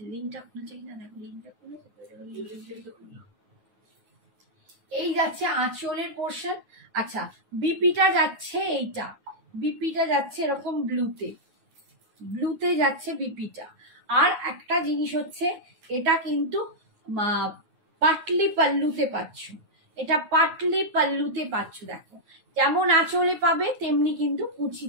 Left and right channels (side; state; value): left; late; 9.5 ms